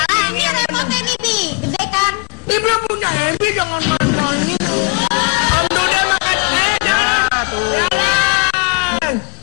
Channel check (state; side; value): quieter; right; 31.1 dB